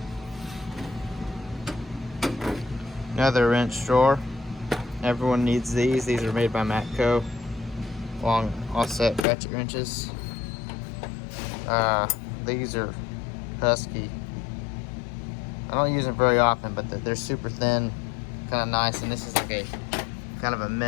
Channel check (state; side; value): drops out; right; at 9.2 s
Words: Another wrench drawer. Everyone needs these. These are made by Matco. Long offset ratchet wrenches. These are Husky. I don't use them very often, but they're super thin, kind of nice. And this is like a kind of a